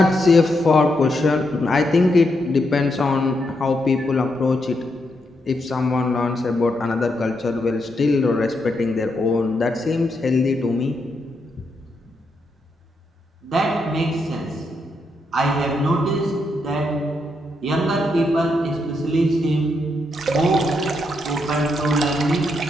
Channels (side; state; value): both; normal; correlation 0.81